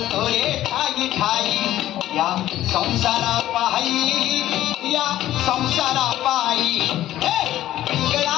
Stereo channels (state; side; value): quieter; right; 13.5 dB